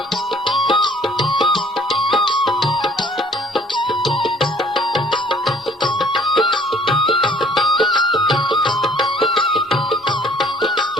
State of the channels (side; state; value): both; normal; correlation 0.57